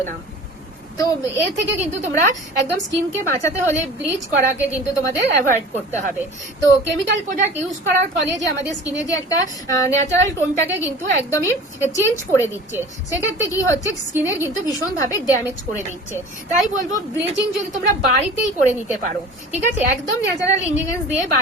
না। তো এর থেকে কিন্তু তোমরা একদম স্কিনকে বাঁচাতে হলে ব্লিচ করাকে কিন্তু তোমাদের অ্যাভয়েড করতে হবে। তো কেমিক্যাল প্রোডাক্ট ইউজ করার ফলে যে আমাদের স্কিনে যে একটা ন্যাচারাল টোনটাকে কিন্তু একদমই চেঞ্জ করে দিচ্ছে, সেক্ষেত্রে কি হচ্ছে স্কিনের কিন্তু ভীষণভাবে ড্যামেজ করে দিচ্ছে। তাই বলবো ব্লিচিং যদি তোমরা বাড়িতেই করে নিতে পারো, ঠিক আছে, একদম ন্যাচারাল ইনগ্রিডিয়েন্টস দিয়ে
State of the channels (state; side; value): normal; both; correlation 0.40